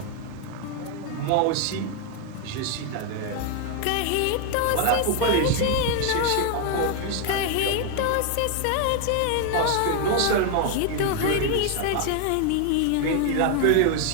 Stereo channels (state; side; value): different; both; correlation 0.01